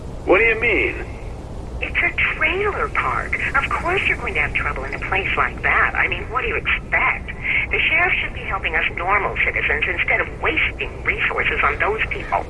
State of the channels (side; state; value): both; identical; correlation 1.00